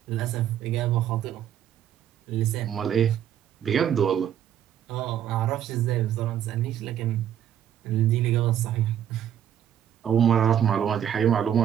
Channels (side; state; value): left; quieter; 10.0 dB